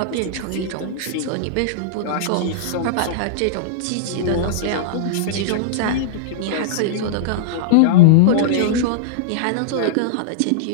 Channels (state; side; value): different; both; correlation -0.02